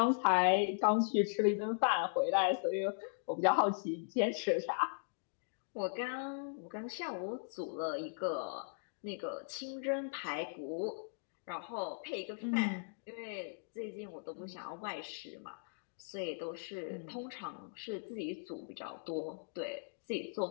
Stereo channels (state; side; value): silent; right; digital silence